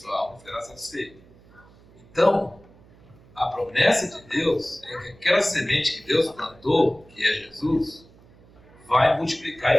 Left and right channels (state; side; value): noise; right; hum, 26 dB below the sound